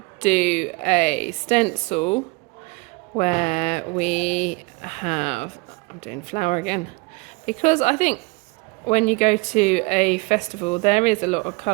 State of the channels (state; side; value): quieter; left; 27.3 dB